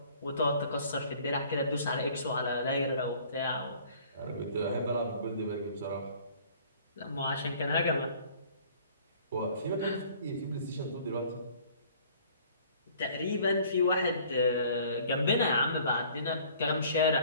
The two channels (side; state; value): both; inverted; correlation -0.53